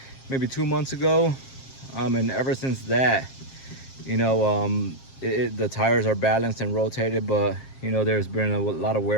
maybe 2 months ago. And ever since that, the tires are balanced and rotated, but there's been a lot of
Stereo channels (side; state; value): right; late; 7.5 ms